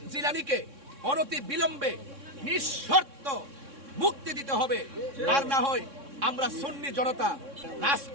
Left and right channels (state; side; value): late; left; 3.6 ms